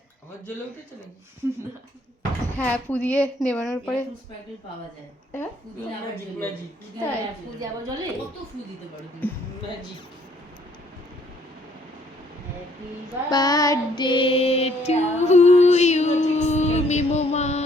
আবার জ্বলে উঠেছে নাকি? হ্যাঁ পুদিয়ে নেবানোর পরে এরকম স্প্রাইটেল পাওয়া যায়। হ্যাঁ? ফু দিলে আবার ম্যাজিক জ্বলে। ম্যাজিক ফু দিলে তাই? আবার ফু জ্বলে। দিয়ে আবার জ্বলে? কত ফু দিতে পারো তুমি? Magic. Happy birthday to you মিমোমা।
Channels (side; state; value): both; normal; correlation 0.64